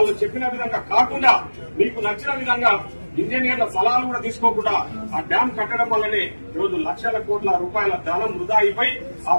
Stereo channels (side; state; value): both; inverted; correlation -1.00